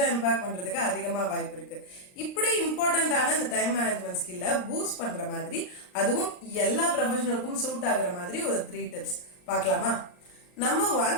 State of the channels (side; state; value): right; late; 39 ms